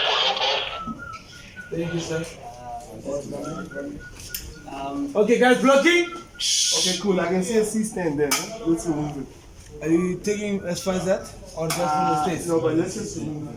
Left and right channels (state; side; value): identical; both; correlation 1.00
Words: Thank you, sir. Okay, guys, blocking. okay, cool. I can see a C stand there. Huh? Let's remove it. Are you taking as far as that, or just from the stage? No, but let's just remove it.